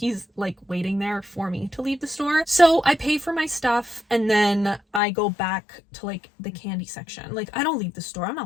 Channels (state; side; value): drops out; right; at 5.0 s